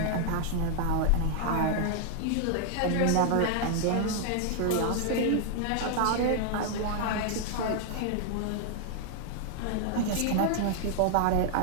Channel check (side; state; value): both; different; correlation 0.00